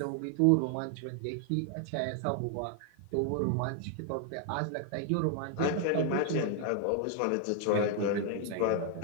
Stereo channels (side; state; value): both; different; correlation 0.00